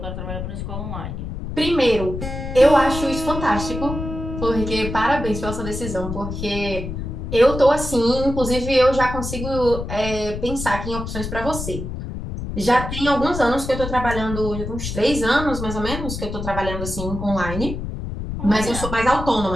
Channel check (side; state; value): left; noise; rumble, 6 dB below the sound